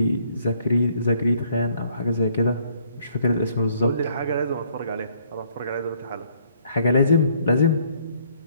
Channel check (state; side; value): inverted; both; correlation -0.65